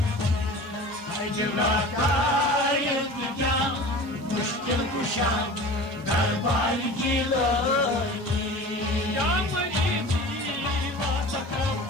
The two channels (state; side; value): normal; both; correlation 0.38